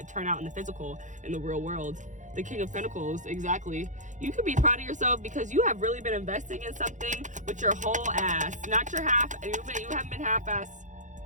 turn out in the physical, in the real world. The King of Pentacles, exactly. You could be proud of yourself because you have really been investing in something with your whole ass, not your half. You haven't been half-ass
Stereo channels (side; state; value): left; late; 0.36 ms